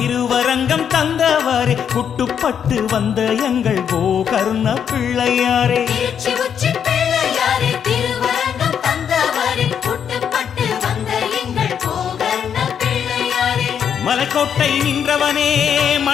தந்தவாரே குட்டுப்பட்டு வந்த எங்கள் கோகர்ண பிள்ளையாரே திருச்சி உச்சி பிள்ளையாரே திருவரங்கம் தந்தவரே புட்டுப்பட்டு வந்த எங்கள் கோகர்ண பிள்ளையாரே மலைக்கோட்டை நின்றவனே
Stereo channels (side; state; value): right; quieter; 8.1 dB